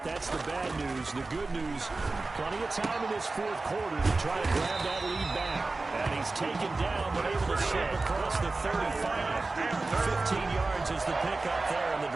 That's the bad news. The good news, plenty of time in this 4th quarter to try to grab that lead back. And he's taken down, but able to slip across the 35. 15 yards is the pickup there, and the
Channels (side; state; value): left; quieter; 3.4 dB